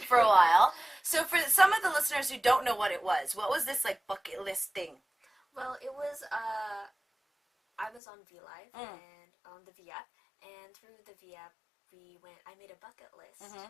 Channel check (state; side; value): drops out; right; at 8.0 s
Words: For a while. So for some of the listeners who don't know what was this like bucket list thing? Well, it was, I was on VLive and on the V app, and through the V app, I made a bucket list